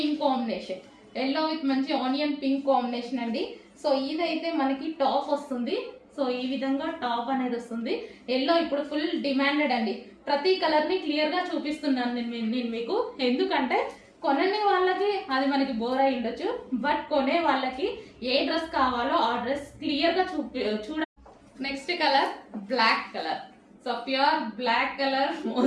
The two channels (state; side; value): identical; both; correlation 1.00